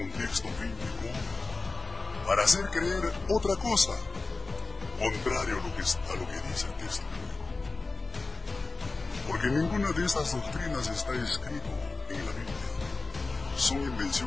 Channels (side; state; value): right; quieter; 3.5 dB